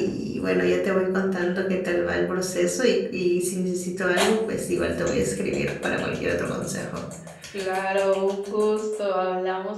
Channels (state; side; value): identical; both; correlation 1.00